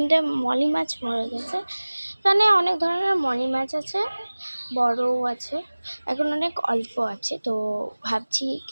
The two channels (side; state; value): both; inverted; correlation -1.00